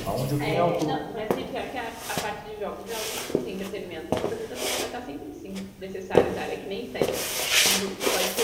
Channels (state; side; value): identical; both; correlation 1.00